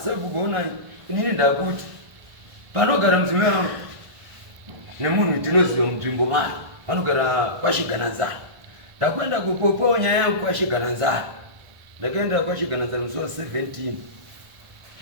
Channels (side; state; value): left; late; 1.5 ms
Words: sabhuku onai inini ndakuti panogara mudzimai wangu nemunhu ndinoziva munzvimbo mari vanogara kwaShigananzara. Ndakwenda kupopawo nyaya yangu kwaShigananzara. Ndakaenda kwaShigananzara musi wa 17